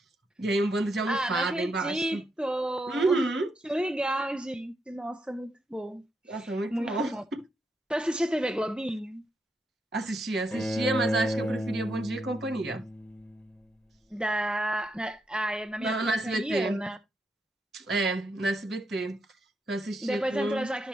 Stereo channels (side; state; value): both; normal; correlation 0.81